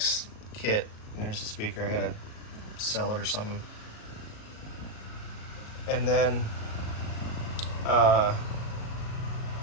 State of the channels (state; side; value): late; right; 37 ms